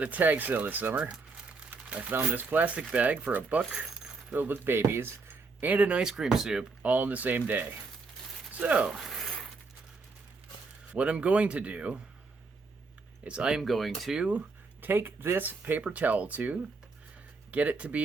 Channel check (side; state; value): left; quieter; 4.1 dB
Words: a tag sale this summer. I found this plastic bag for $1 filled with babies and an ice cream soup all in the same day. So, what I'm going to do is I am going to take this paper towel tube, get it to